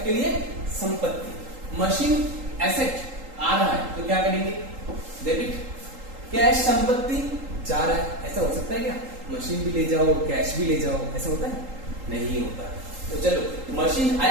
लिए संपत्ति। मशीन एसेट आ रहा है तो क्या करेंगे, डेबिट। कैश संपत्ति जा रहा है, ऐसा हो सकता है क्या, मशीन भी ले जाओ कैश भी ले जाओ, ऐसा होता है, नहीं होता। तो चलो मशीन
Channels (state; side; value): late; left; 3.8 ms